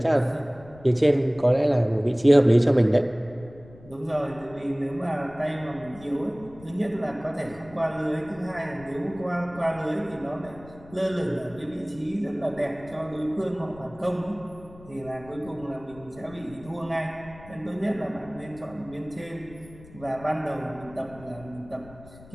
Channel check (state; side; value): noise; left; rumble, 20 dB below the sound